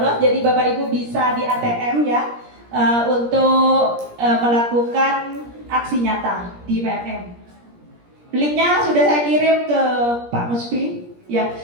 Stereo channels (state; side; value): late; left; 17 ms